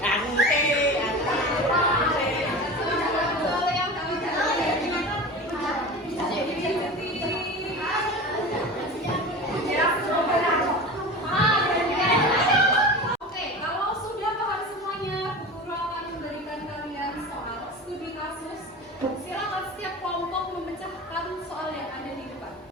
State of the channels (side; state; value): both; normal; correlation 0.32